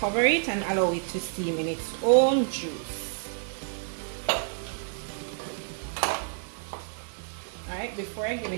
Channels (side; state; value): left; silent; digital silence